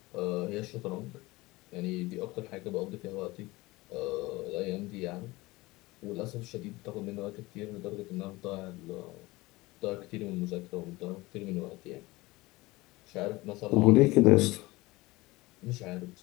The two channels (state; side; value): quieter; right; 21.0 dB